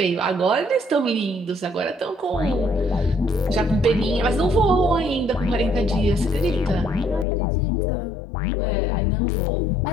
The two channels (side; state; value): right; drops out; at 7.2 s